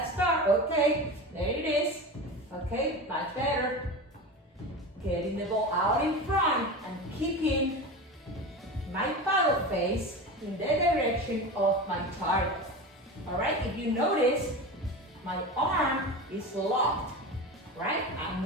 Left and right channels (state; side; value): normal; both; correlation 0.27